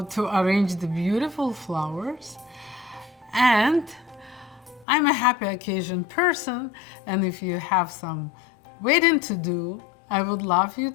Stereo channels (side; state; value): right; drops out; at 4.9 s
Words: to arrange the beautiful flowers. And I'm a happy occasion person, and if you have some wedding to do, I would love you